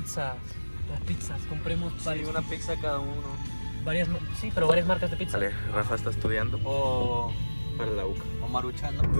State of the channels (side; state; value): both; inverted; correlation -1.00